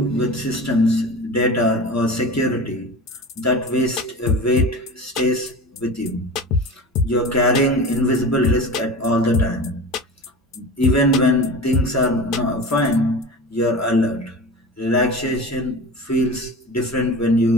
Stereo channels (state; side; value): normal; both; correlation 0.32